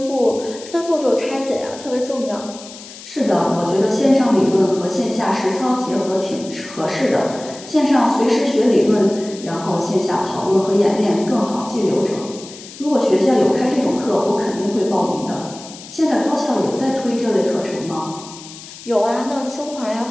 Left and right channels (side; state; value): left; noise; hiss, 16 dB below the sound